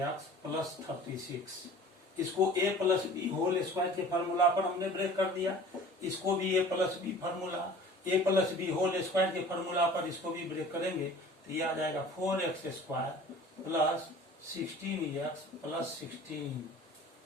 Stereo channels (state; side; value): normal; both; correlation 0.44